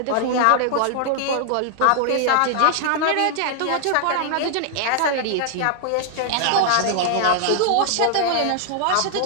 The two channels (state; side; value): different; both; correlation -0.01